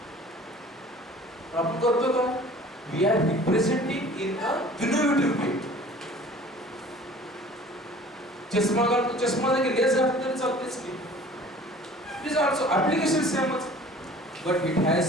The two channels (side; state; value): both; normal; correlation 0.47